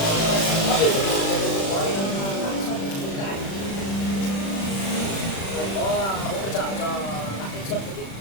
Có hỗ trợ cho lãi suất một chút.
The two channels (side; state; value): right; late; 36 ms